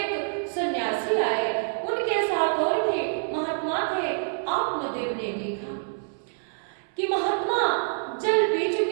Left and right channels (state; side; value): silent; left; 59 dB below the other